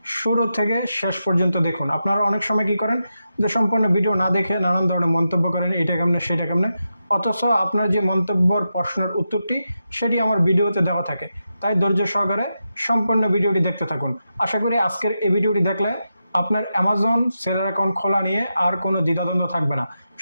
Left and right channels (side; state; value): both; inverted; correlation -0.88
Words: শুরু থেকে শেষ পর্যন্ত দেখুন। আপনারা অনেক সময় কী করেন যে সম্পূর্ণ ভিডিও না দেখে নানান ধরনের মন্তব্য করেন, এটা কেমনে সেটা কেমনে, অথচ আপনার যে মন্তব্যর প্রশ্নের উত্তরটি সেটি আমার ভিডিওতে দেওয়া থাকে। তাই ধৈর্য সহকারে সম্পূর্ণ ভিডিওটি দেখতে থাকুন। আশা করি আজকের এই ভিডিওটি দেখলে আপনার অ্যামাজন সেলার অ্যাকাউন্ট খোলা নিয়ে আর কোনো দ্বিধাদ্বন্দ্ব থাকবে না।